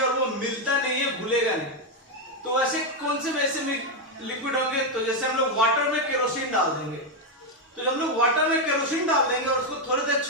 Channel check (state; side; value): normal; both; correlation 0.04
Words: और वो मिलता नहीं है, घुलेगा नहीं। तो वैसे कौन से वैसे लिक्विड होंगे, तो जैसे हम लोग वाटर में केरोसिन डाल देंगे, तो जब हम लोग वाटर में केरोसिन डाल देंगे और उसको थोड़ी देर